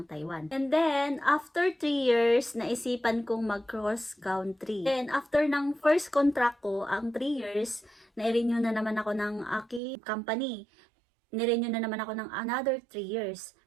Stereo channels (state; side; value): drops out; left; at 9.8 s